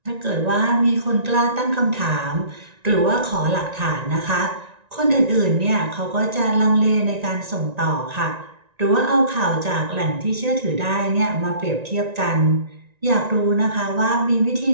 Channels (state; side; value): late; left; 1.9 ms